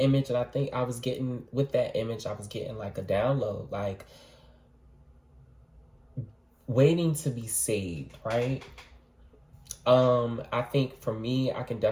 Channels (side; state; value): both; identical; correlation 1.00